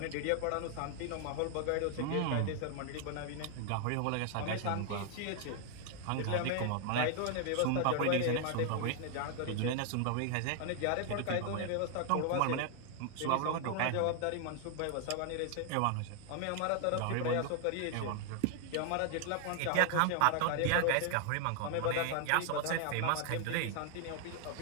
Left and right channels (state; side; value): different; both; correlation 0.00